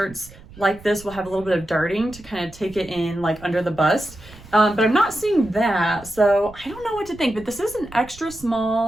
like this will have a little bit of darting to kind of take it in like under the bust. But I'm not seeing that, so I don't know what to think. But this is an extra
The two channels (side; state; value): right; noise; rumble, 20 dB below the sound